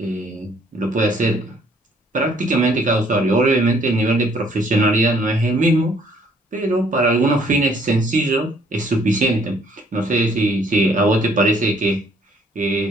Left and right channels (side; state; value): both; normal; correlation 0.63